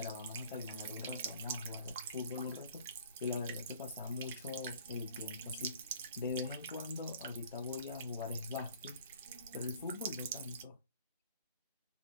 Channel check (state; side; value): inverted; both; correlation -0.51